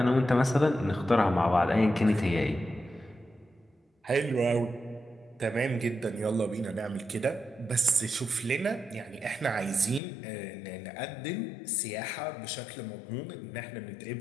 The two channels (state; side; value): drops out; right; at 10.0 s